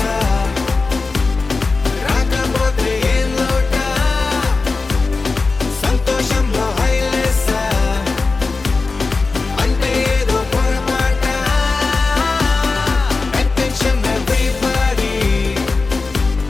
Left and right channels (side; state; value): right; quieter; 3.9 dB